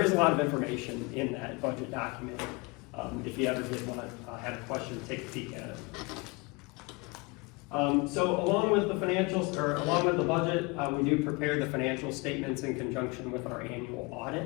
is a lot of information in that budget document. If you ever did want to have a question, take a peek at it. So along with the financials, or along with the budget, we do prepare the financial statements in conjunction with our annual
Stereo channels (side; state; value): right; quieter; 27.0 dB